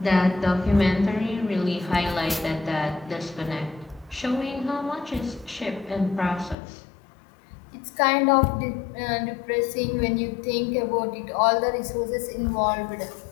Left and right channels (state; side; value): drops out; right; at 6.6 s